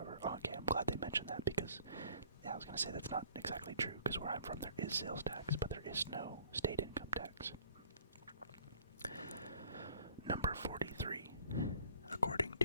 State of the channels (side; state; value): both; inverted; correlation -0.54